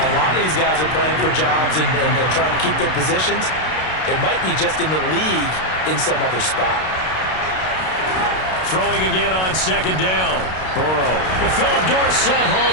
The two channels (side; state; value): right; late; 32 ms